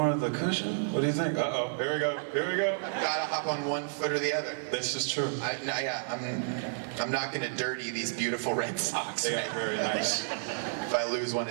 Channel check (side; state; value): left; silent; 57 dB below the other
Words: of the cushion? What do you think? Uh-oh, here we go. Gotta hop on one foot or the other. This is true. I'm not gonna dirty these beautiful red socks. They are very nice. If I lose one